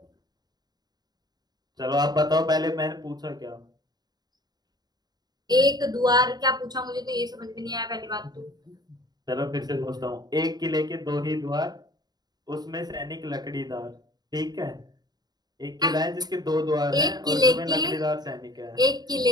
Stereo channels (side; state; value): left; late; 0.20 ms